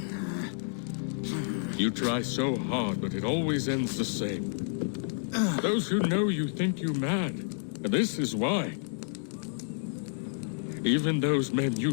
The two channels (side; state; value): right; silent; digital silence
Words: You try so hard, but it always ends the same. Those who know you think you mad, and this is why. Even those men